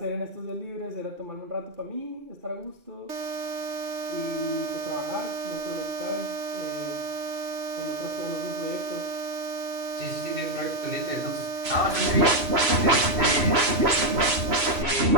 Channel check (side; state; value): left; late; 3.0 ms